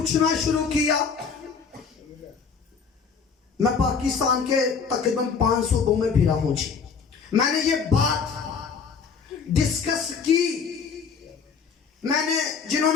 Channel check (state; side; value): quieter; right; 5.8 dB